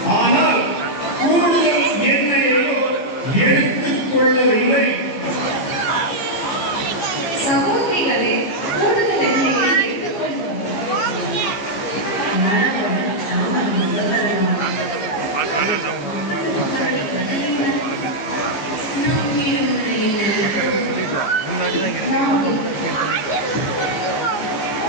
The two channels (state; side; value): late; right; 15 ms